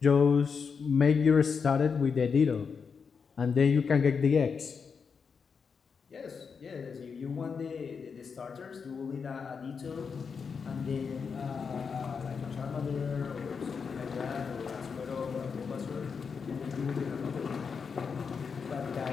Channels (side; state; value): right; quieter; 5.8 dB